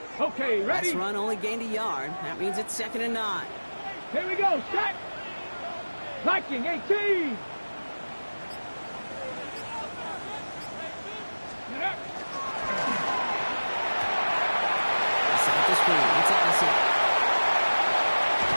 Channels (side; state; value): both; inverted; correlation -1.00